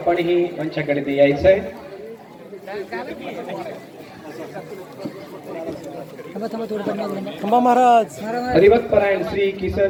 मंचाकडे यायचं आहे. थांबा थांबा थोडं थांबा. थांबा महाराज. हरिभक्तपरायण श्री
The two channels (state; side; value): identical; both; correlation 1.00